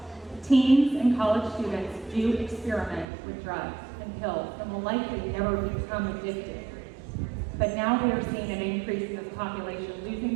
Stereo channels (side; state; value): left; drops out; at 3.1 s